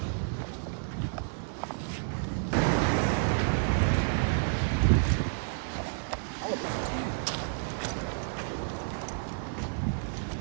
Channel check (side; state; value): left; silent; digital silence